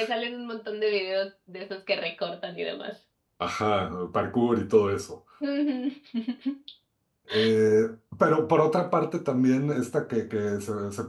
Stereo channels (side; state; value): both; identical; correlation 1.00